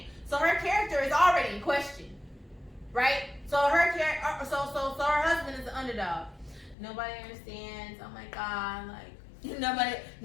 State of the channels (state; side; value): drops out; right; at 6.8 s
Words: So her character is already in question. Right? So her so her husband is the underdog. Nobody understands. Oh my God, like nobody